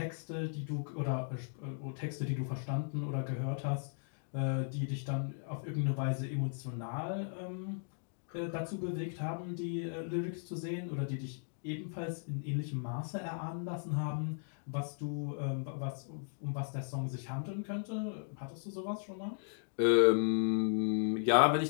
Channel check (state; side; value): silent; right; digital silence